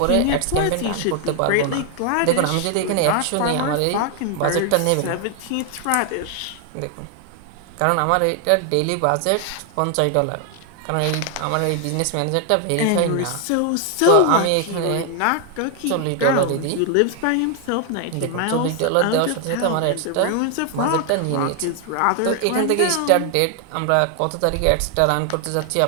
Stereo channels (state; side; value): different; both; correlation 0.00